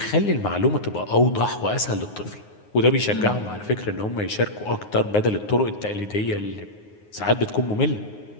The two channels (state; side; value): late; right; 9.6 ms